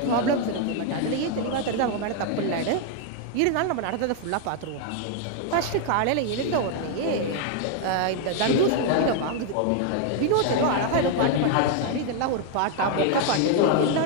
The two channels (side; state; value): both; different; correlation 0.00